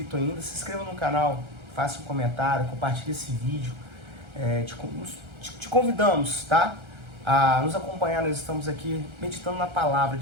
ainda, se inscreva no canal, faça um comentário, compartilhe esse vídeo. Te convidamos, tá? A nos acompanhar. Nós estamos aqui meditando na palavra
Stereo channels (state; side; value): late; left; 1.3 ms